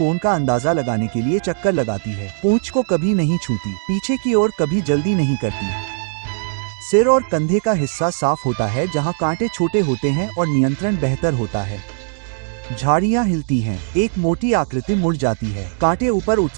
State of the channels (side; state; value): left; silent; digital silence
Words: का अंदाजा लगाने के लिए चक्कर लगाती है। पूंछ को कभी नहीं छूती, पीछे की ओर कभी जल्दी नहीं करती। सिर और कंधे का हिस्सा साफ होता है जहां कांटे छोटे होते हैं और नियंत्रण बेहतर होता है। झाड़ियां हिलती हैं, एक मोटी आकृति मुड़ जाती है। कांटे ऊपर